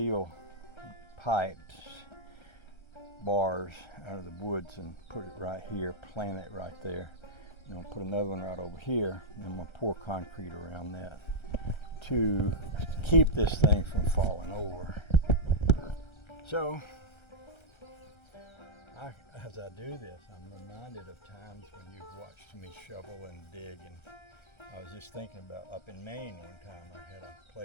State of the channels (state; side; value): late; right; 1.3 ms